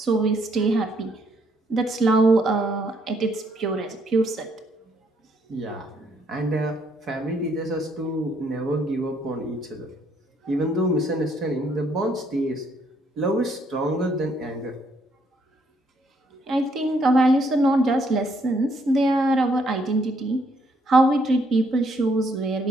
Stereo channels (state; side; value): normal; both; correlation 0.70